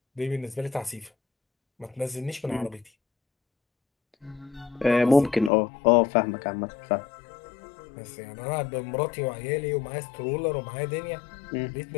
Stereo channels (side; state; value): right; drops out; at 5.5 s